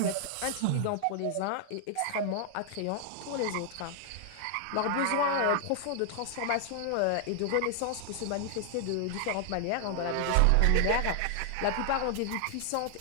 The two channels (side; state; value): both; different; correlation 0.00